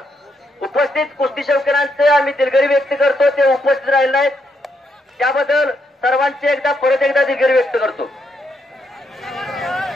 उपस्थित कुस्ती शौकीनांचे आम्ही दिलगिरी व्यक्त करतो. ते उपस्थित राहिले आहेत त्याबद्दल सर्वांचे परत एकदा दिलगिरी व्यक्त करतो.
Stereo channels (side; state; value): both; normal; correlation 0.78